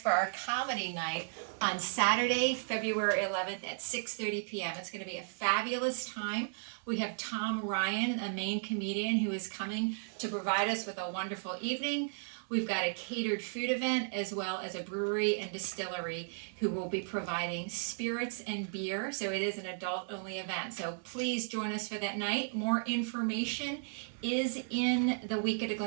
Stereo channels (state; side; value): silent; left; digital silence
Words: our comedy night on Saturday, February 11th at 6:30 p.m. It's going to be a fabulous time. We have Tom Ryan, a main comedian, who is coming to provide us with a wonderful evening. We've got a catered food event as well as a brewery and distillery who will be providing spirits and beer. So it is an adult only event. So please join us for that night. More information is in the Week at a